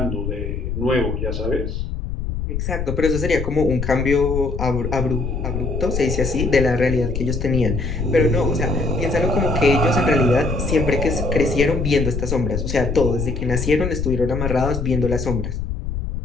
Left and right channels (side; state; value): left; noise; rumble, 3 dB below the sound